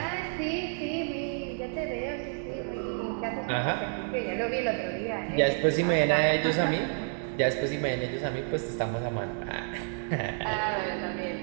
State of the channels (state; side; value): silent; left; 58 dB below the other